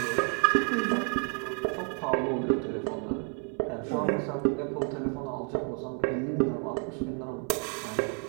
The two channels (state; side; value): quieter; left; 36.2 dB